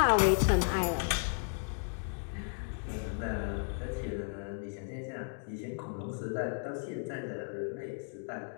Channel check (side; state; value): right; silent; 55 dB below the other